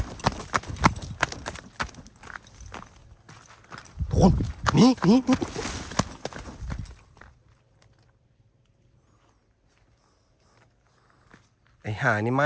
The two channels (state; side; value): identical; both; correlation 1.00